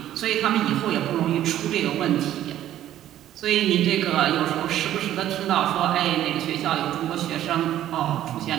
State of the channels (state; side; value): quieter; left; 12.4 dB